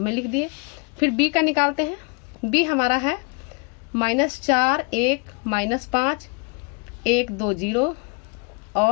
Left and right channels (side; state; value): right; quieter; 33.4 dB